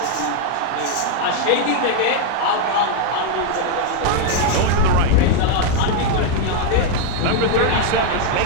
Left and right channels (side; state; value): both; different; correlation 0.00